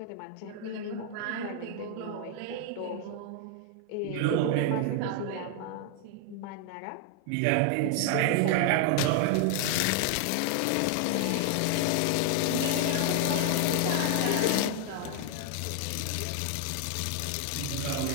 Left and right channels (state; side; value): different; both; correlation 0.00